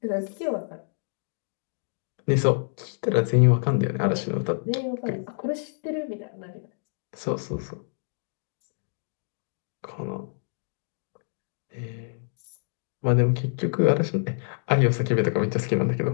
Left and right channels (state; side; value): silent; right; digital silence